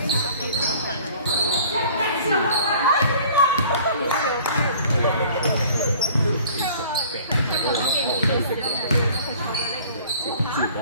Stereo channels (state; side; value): inverted; both; correlation -0.50